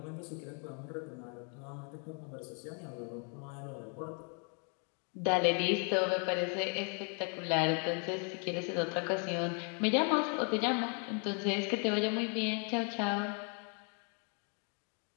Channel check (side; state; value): right; quieter; 39.3 dB